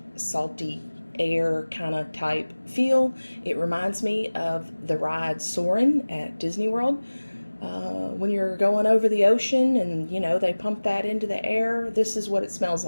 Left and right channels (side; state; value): both; inverted; correlation -1.00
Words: salty air kind of type feel. It reminds me of the ride Soarin' at Disney World. When you're going over the ocean and, you know, they pump that into the air, this is what it smells